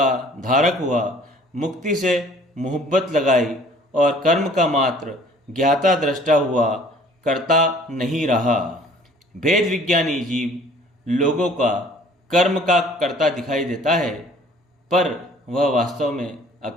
धारक हुआ, मुक्ति से मोहब्बत लगाई और कर्म का मात्र ज्ञाता दृष्टा हुआ, कर्ता नहीं रहा। भेद विज्ञानी जीव लोगों का कर्म का कर्ता दिखाई देता है, पर वह वास्तव में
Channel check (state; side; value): normal; both; correlation 0.53